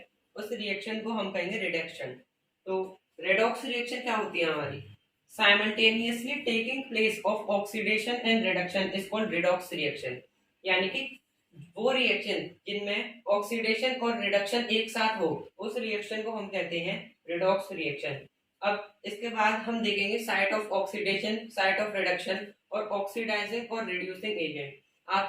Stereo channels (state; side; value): identical; both; correlation 1.00